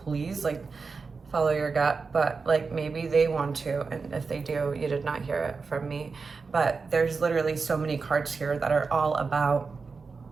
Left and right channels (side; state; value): left; quieter; 4.7 dB